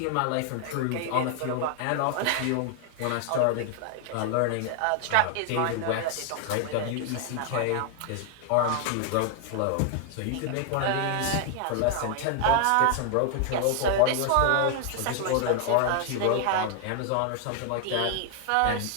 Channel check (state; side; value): different; both; correlation 0.00